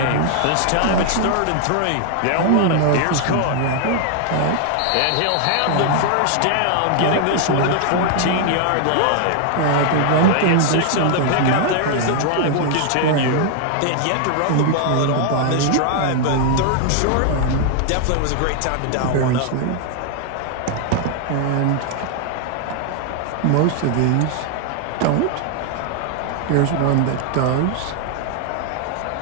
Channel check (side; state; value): both; different; correlation 0.00